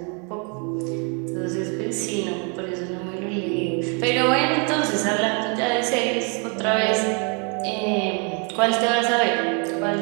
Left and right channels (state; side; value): quieter; left; 35.7 dB